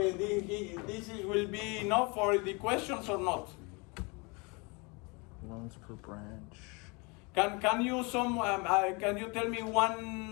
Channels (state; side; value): quieter; right; 29.3 dB